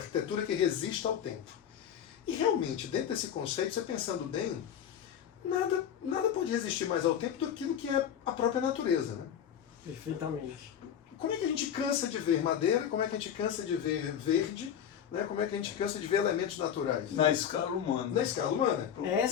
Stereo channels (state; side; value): quieter; right; 9.0 dB